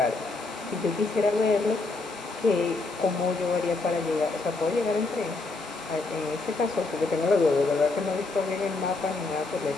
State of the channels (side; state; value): right; quieter; 3.5 dB